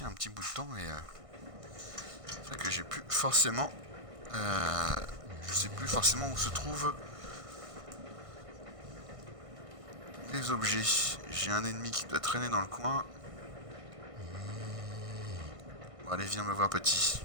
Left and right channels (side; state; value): left; late; 1.6 ms